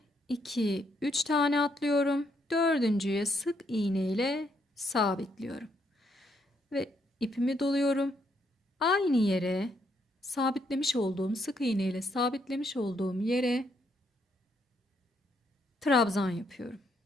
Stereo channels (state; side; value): normal; both; correlation 0.75